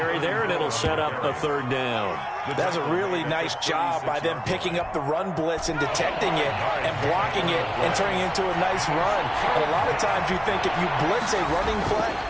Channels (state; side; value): identical; both; correlation 1.00